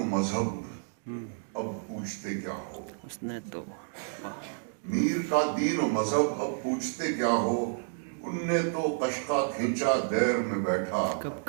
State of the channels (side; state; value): left; silent; digital silence